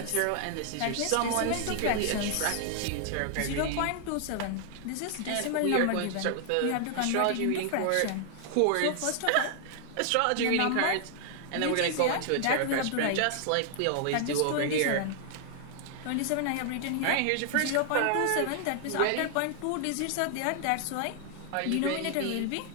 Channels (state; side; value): different; both; correlation 0.00